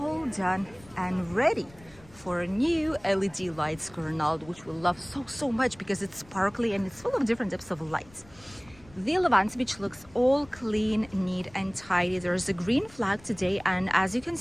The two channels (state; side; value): noise; left; rumble, 24 dB below the sound